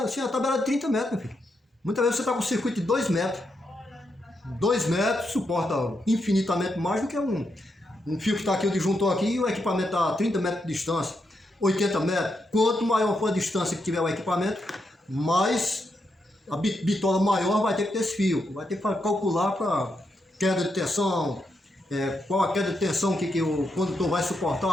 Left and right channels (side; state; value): both; normal; correlation 0.83